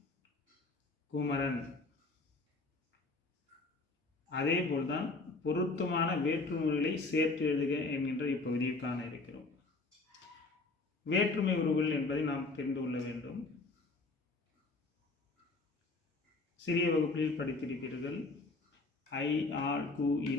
குமரன். அதே போல்தான் பொருத்தமான வேற்றுமைகளை சேர்த்து எழுதுக என்கின்ற இப்பகுதியில் காண இருக்கிறோம். வேற்றுமை உருவுகள் என்பதை நாம் தெரிந்து கொள்ள வேண்டும். சிறிய வகுப்பில் படித்திருப்பீர்கள். ஐ, ஆள், கு,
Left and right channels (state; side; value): quieter; right; 3.5 dB